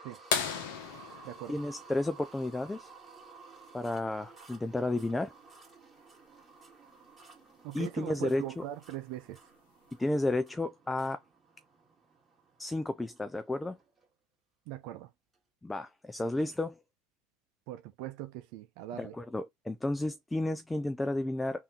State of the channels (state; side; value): normal; both; correlation 0.82